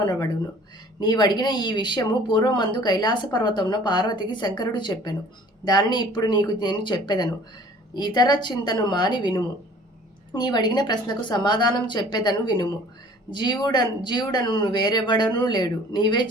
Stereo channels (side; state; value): both; normal; correlation 0.51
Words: నీవడిగిన ఈ విషయము పూర్వమందు కైలాస పర్వతంలో పార్వతికి శంకరుడు చెప్పెను. దానిని ఇప్పుడు నీకు నేను చెప్పెదను. ఇతర చింతను మాని వినుము. నీవడిగిన ప్రశ్నకు సమాధానం చెప్పేదను వినుము. జీవుడను వేరెవడనూ లేడు, నీవే